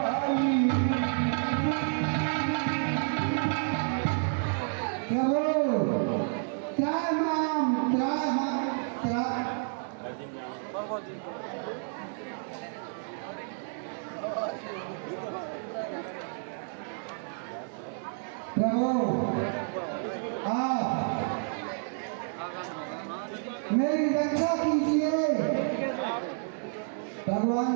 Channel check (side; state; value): left; silent; 58 dB below the other